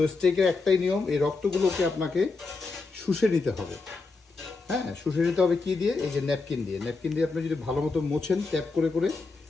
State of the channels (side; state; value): right; quieter; 4.0 dB